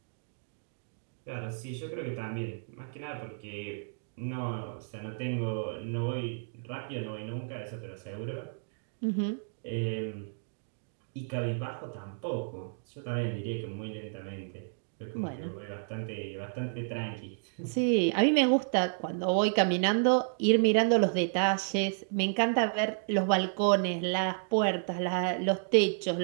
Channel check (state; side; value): silent; left; digital silence